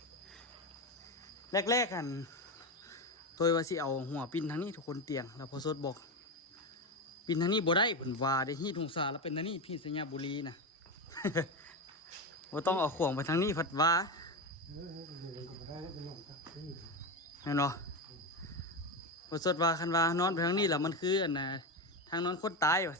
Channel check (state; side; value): normal; both; correlation 0.16